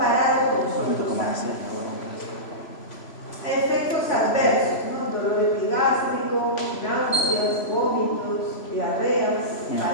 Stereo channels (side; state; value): right; late; 3.0 ms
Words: con los otros fármacos. Efectos adversos, ¿no? Dolor epigástrico, náuseas, vómitos, diarreas,